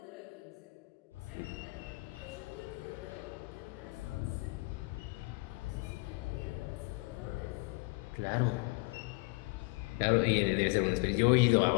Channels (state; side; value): quieter; right; 26.6 dB